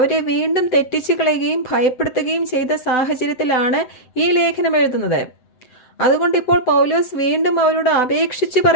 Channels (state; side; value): late; right; 7.9 ms